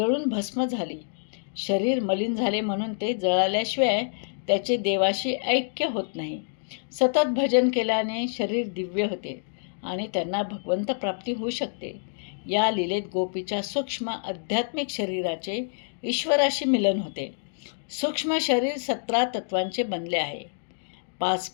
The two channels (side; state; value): right; silent; digital silence